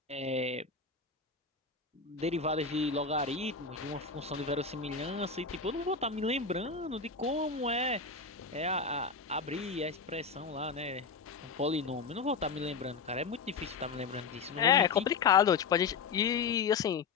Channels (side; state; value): right; quieter; 5.1 dB